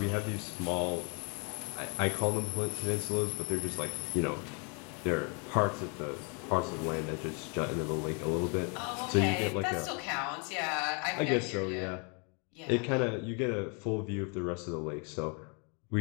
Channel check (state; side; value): quieter; right; 35.9 dB